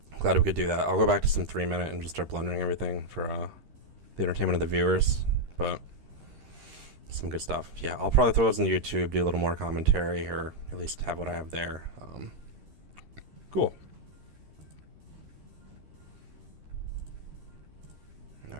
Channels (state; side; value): late; left; 13 ms